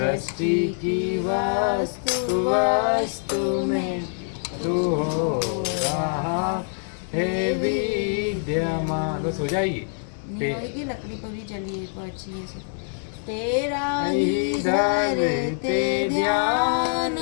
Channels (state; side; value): silent; right; digital silence